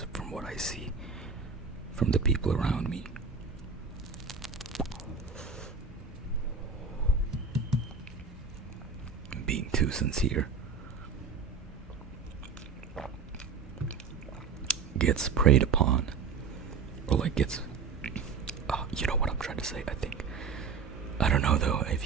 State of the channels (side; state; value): left; quieter; 5.4 dB